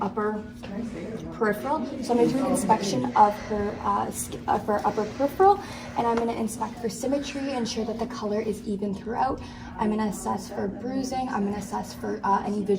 upper peripheral. So I'm going to do an inspection of her upper peripheral, and I'm going to inspect for symmetry, ensure that the color is even throughout. I'm going to assess for bruising. I'm going to assess for any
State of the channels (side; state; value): both; identical; correlation 1.00